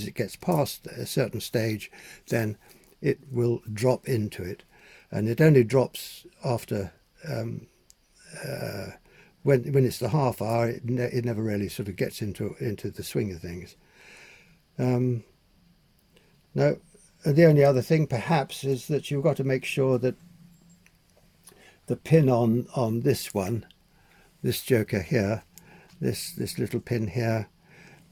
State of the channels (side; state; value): both; identical; correlation 1.00